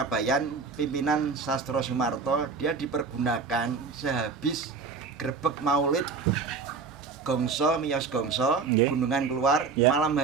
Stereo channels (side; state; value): left; quieter; 4.9 dB